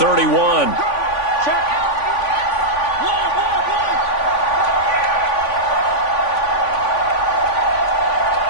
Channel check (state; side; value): late; right; 3.5 ms